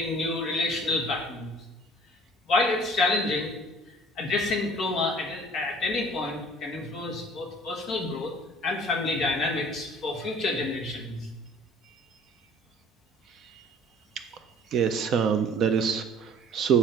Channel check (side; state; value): both; normal; correlation 0.50